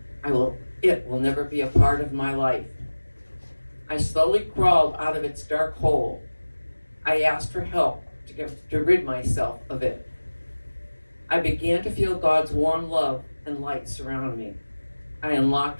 It will never be a part of my life. I slowly crawled out of its dark hole. I asked for help to rid myself of it. I began to feel God's warm love and light surround me. I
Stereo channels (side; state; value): both; inverted; correlation -1.00